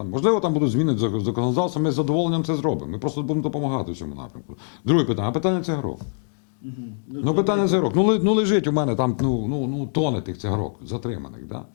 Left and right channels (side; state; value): right; silent; digital silence